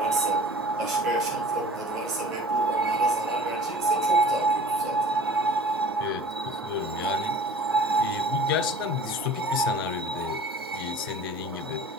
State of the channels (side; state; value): both; normal; correlation 0.44